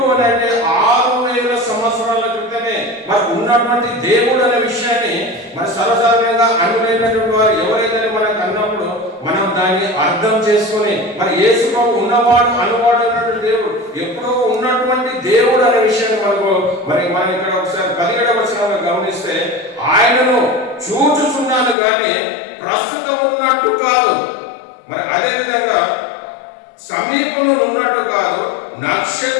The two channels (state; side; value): drops out; right; at 21.8 s